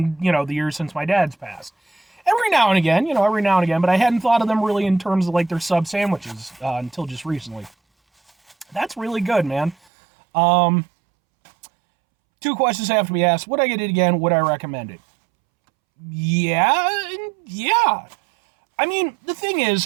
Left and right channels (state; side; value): drops out; left; at 9.8 s